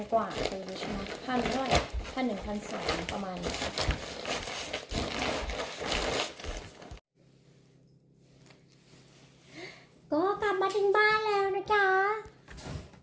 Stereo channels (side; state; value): both; identical; correlation 1.00